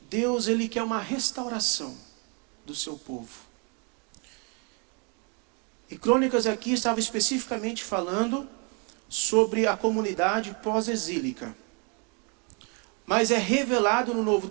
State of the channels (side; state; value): left; quieter; 35.1 dB